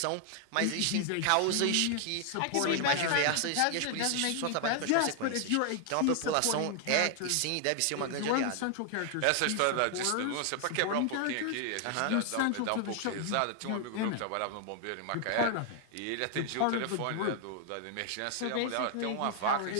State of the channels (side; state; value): both; different; correlation 0.00